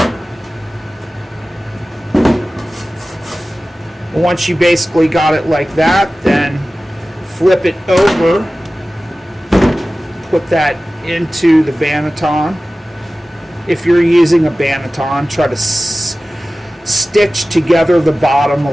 Once you basically got it like that, then flip it over, put that into the banneton. If you're using a banneton, try to stitch together the bottom a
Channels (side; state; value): both; normal; correlation 0.96